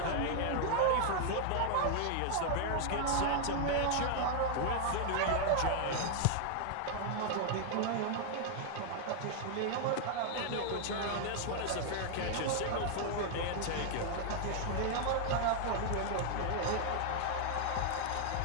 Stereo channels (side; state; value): both; different; correlation 0.00